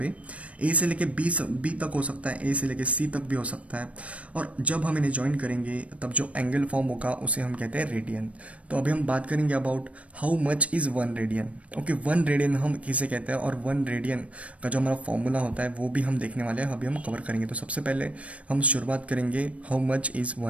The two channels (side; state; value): left; late; 0.064 ms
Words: ए से लेके बी तक हो सकता है, ए से लेके सी तक भी हो सकता है, और जब हम इन्हें ज्वाइन करेंगे तब जो एंगल फॉर्म होगा उसे हम कहते हैं रेडियन। तो अभी हम बात करेंगे about how much is 1 radian. Okay, 1 radian हम किसे कहते हैं, और 1 रेडियन का जो हमारा फॉर्मूला होता है वो भी हम देखने वाले हैं, अभी हम कवर करेंगे। तो सबसे पहले हम शुरुआत करेंगे हाउ मच इज़